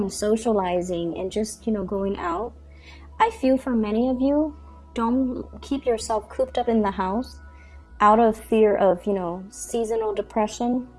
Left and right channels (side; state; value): both; identical; correlation 1.00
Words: socializing, and just, you know, going out. I feel for many of you, don't keep yourself cooped up in the house out of fear of, you know, seasonal depression.